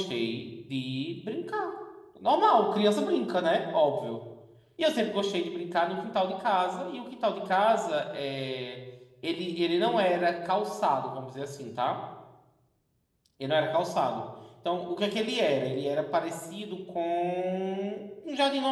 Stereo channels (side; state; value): both; identical; correlation 1.00